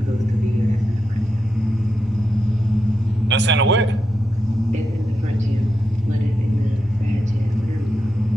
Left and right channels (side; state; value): both; normal; correlation 0.86